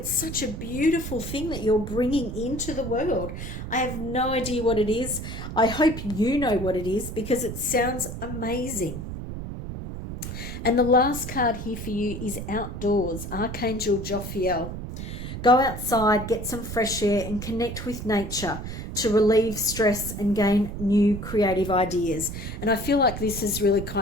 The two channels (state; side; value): noise; right; rumble, 7 dB below the sound